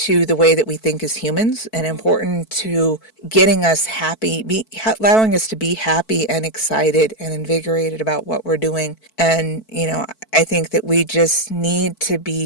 the way that we think as humans and important to getting us happy, allowing us to be happy and excited and invigorated about what we're doing. And, I think that we just need to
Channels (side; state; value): right; late; 4.5 ms